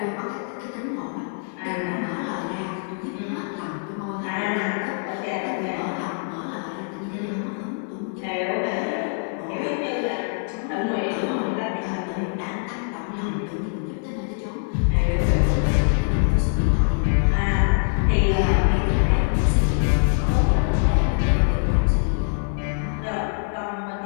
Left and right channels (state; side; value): silent; right; 63 dB below the other